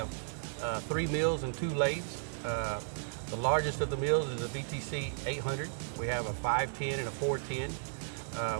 3 mills and 2 lathes. The largest of the mills is a VTC 800. We have a 510 and a 410.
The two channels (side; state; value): left; silent; digital silence